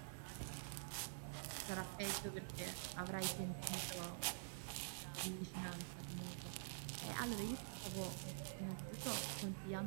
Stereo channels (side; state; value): left; silent; digital silence